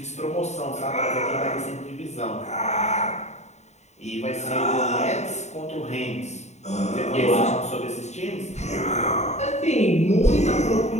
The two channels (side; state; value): right; late; 0.33 ms